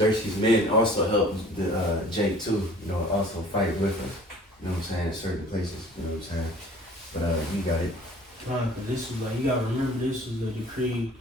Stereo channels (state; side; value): normal; both; correlation 0.49